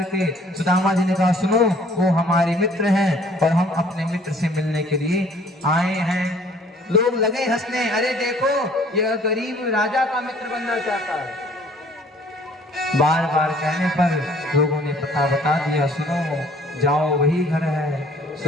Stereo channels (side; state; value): both; normal; correlation 0.56